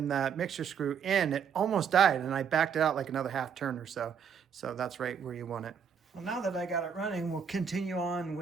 that mixture screw in, it almost died and I backed it out like another half turn or so. So that's right where you want it. Well, now that I got it running, we'll continue on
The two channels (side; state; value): left; quieter; 7.2 dB